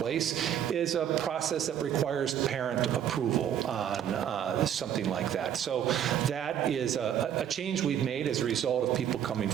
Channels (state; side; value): quieter; left; 9.6 dB